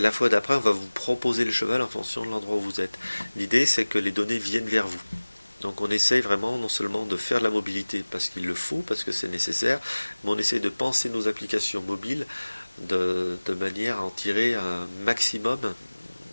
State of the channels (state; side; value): inverted; both; correlation -1.00